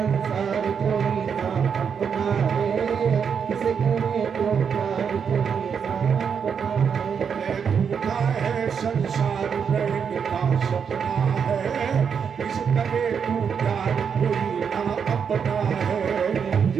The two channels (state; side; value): quieter; left; 6.9 dB